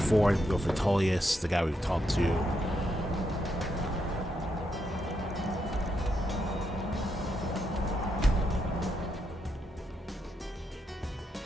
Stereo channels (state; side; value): normal; both; correlation 0.81